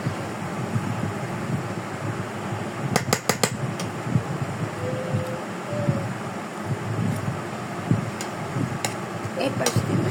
এই পাশ দিয়ে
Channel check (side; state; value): both; identical; correlation 1.00